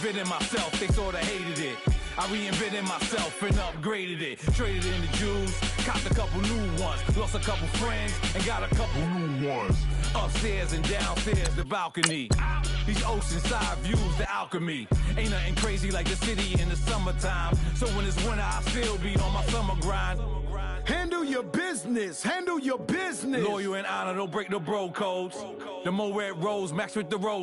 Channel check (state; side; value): identical; both; correlation 1.00